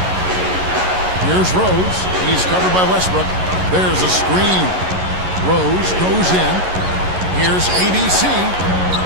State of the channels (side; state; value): left; late; 11 ms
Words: Here's Rose. He's covered by Westbrook. There's a screen. Rose goes in. Here's ABC.